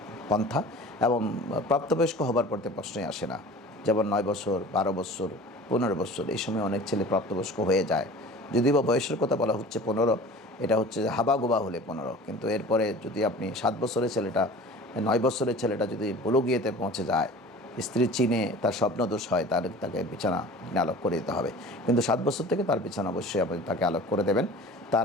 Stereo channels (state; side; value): normal; both; correlation 0.41